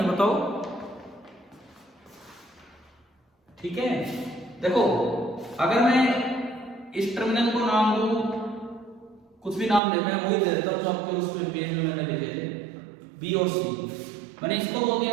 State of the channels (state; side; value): drops out; left; at 9.8 s